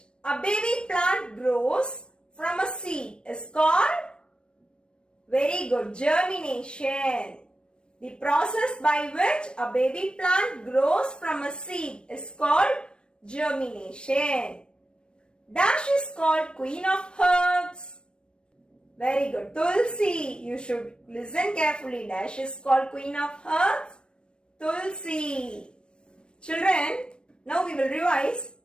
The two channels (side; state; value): right; late; 0.054 ms